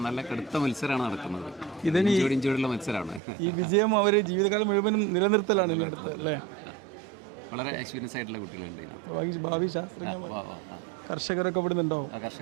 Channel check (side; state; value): left; drops out; at 3.2 s